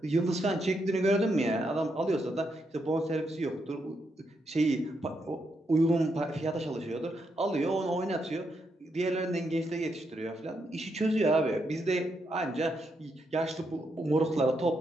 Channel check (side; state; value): both; normal; correlation 0.80